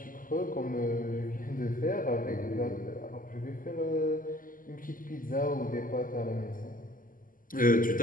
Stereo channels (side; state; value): right; late; 0.40 ms